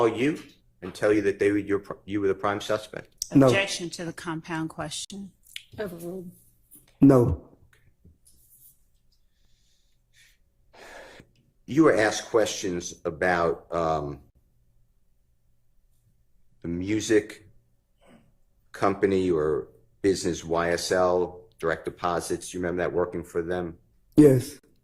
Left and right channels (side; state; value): both; identical; correlation 1.00